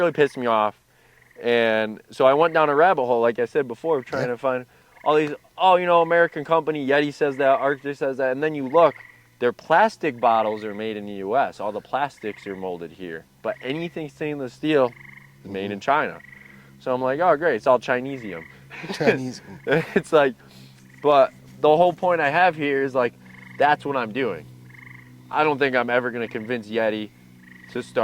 pissed me off, and so I went down a rabbit hole, like I said before, of trying Yeah. to find all these. Oh, American company Yeti says that, Arctic says that, and then you look, their plastic bottles are made in the U.S. All the plastics are molded here, but anything stainless steel is made in China. So I'm like, oh great, it's all Chinesium. Chinese. It's like, but the whole point I have here is like, that's what I'm doing. I don't think I'm ever going to convince Yeti to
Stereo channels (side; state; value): both; identical; correlation 1.00